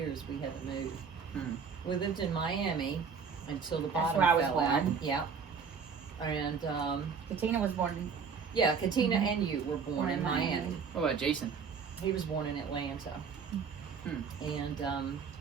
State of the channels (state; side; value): quieter; left; 6.0 dB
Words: we had to move. We lived in Miami until the bottom where I was fell out. born. Yeah. And, Katina was born in, yeah, Katina and you were born in Miami. What about Jason? He was born in Atlanta. And,